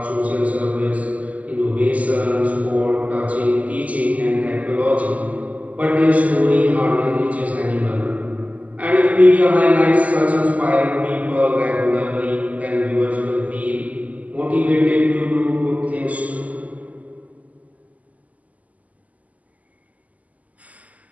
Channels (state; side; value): late; left; 0.073 ms